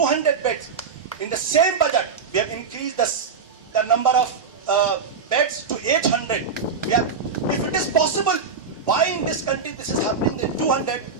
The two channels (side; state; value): left; quieter; 5.4 dB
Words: beds. In the same budget, we have increased the number of beds to 800. If it is possible, why in this country this is happening in 200?